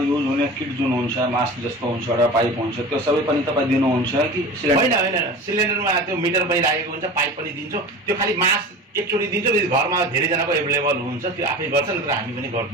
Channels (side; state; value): both; normal; correlation 0.35